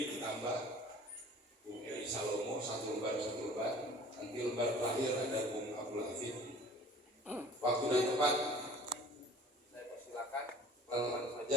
Tambah, Bung Edi Salomo, satu lembar. Nanti lembar terakhir ada Bung Abdul Hafid. Waktu dan tempat saya persilakan, teman-teman saja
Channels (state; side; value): normal; both; correlation 0.47